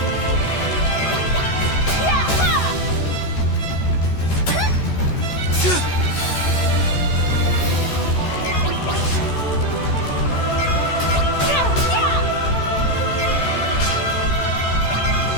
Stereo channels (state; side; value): late; right; 14 ms